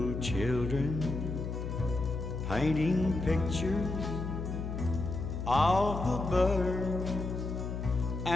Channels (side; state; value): left; noise; hum, 4 dB below the sound